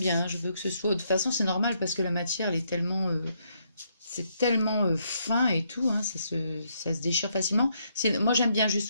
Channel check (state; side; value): inverted; both; correlation -0.75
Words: Hein, je veux que ce soit. De toute façon, c'est normal parce que la matière, elle est tellement, c'est tellement fin et tout. Hein, ça se déchire facilement. Moi, j'aime bien